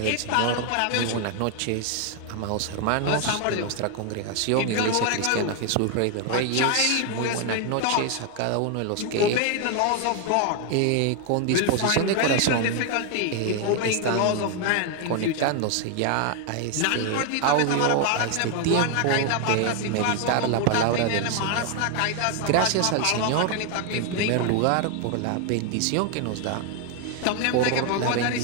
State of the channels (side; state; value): both; different; correlation 0.01